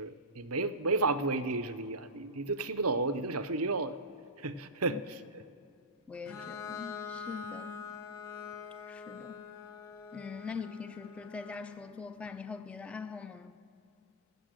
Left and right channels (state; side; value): normal; both; correlation -0.17